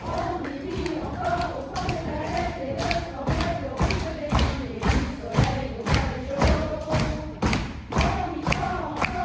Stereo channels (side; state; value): both; identical; correlation 1.00